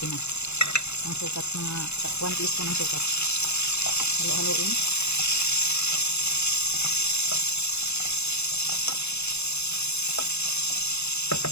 Ang sukat, mga 1 teaspoon ng sukat. Halo-haloin.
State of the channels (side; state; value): right; late; 0.80 ms